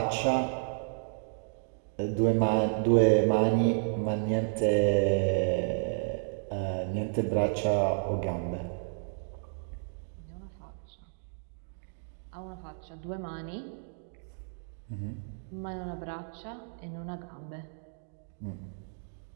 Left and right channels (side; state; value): left; silent; digital silence